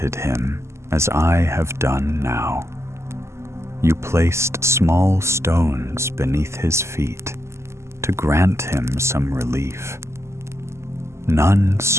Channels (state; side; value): late; left; 0.13 ms